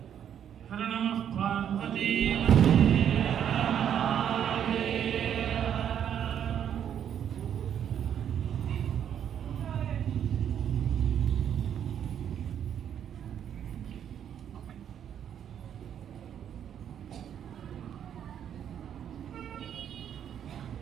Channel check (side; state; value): left; quieter; 9.2 dB